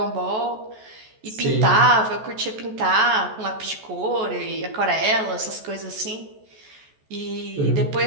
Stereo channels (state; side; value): late; left; 14 ms